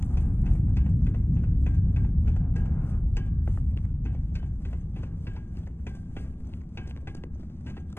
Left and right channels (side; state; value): right; late; 0.11 ms